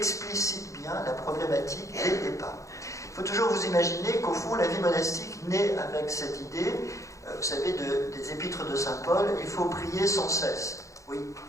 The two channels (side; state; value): right; late; 0.15 ms